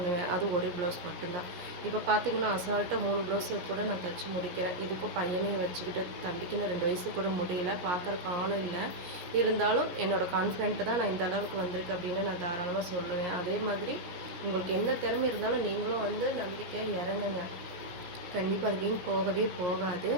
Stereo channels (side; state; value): left; late; 16 ms